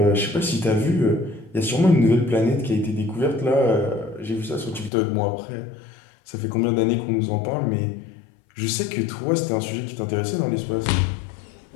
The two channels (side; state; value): right; drops out; at 4.9 s